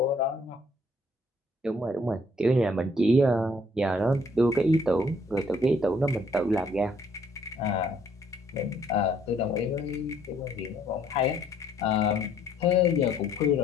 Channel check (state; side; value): normal; both; correlation 0.64